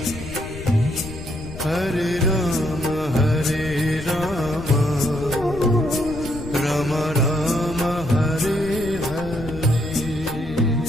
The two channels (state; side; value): noise; left; rumble, 12 dB below the sound